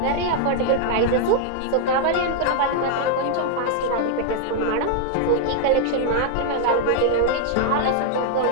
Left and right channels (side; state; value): both; different; correlation 0.00